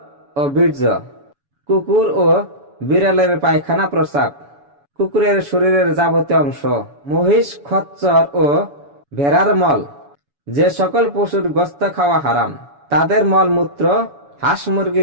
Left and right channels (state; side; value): late; left; 7.1 ms